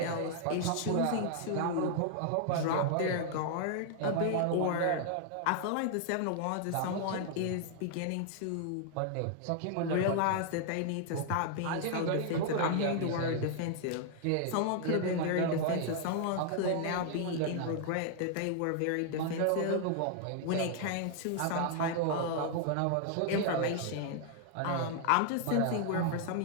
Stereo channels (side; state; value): both; different; correlation 0.00